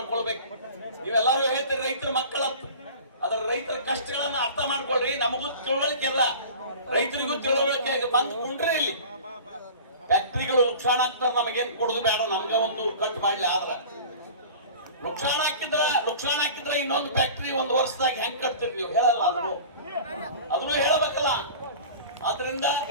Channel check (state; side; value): inverted; both; correlation -0.39